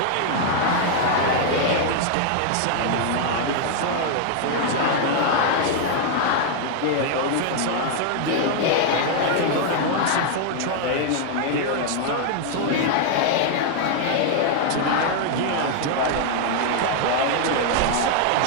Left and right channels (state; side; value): different; both; correlation 0.00